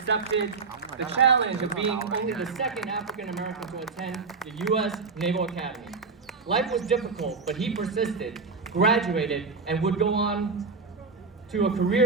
the challenge of being only the second African American to attend the U.S. Naval Academy. Life was difficult, but he persisted, graduated, and would go on to a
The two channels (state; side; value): quieter; left; 4.5 dB